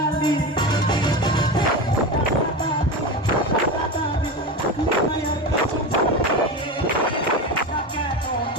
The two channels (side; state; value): both; normal; correlation 0.22